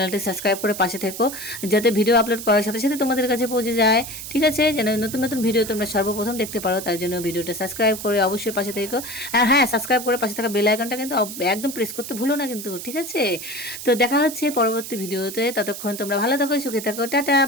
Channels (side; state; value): right; noise; hiss, 9 dB below the sound